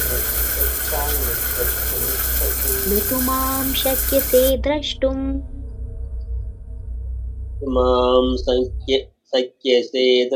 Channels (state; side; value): identical; both; correlation 1.00